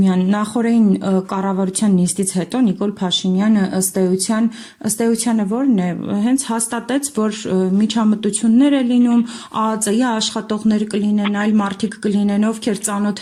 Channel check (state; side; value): identical; both; correlation 1.00